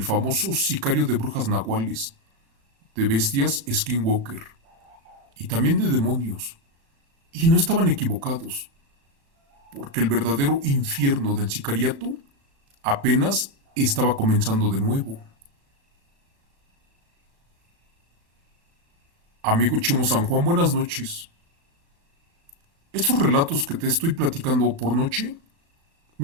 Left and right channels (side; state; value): left; late; 35 ms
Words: famoso sicario de brujas nahuales, de bestias Skinwalker y también de demonios. Y no estaban equivocados, porque el verdadero infierno del sicariato apenas estaba comenzando de nuevo. Amigo Chimo San Juan, buenas noches. Estos relatos que te estoy platicando por noche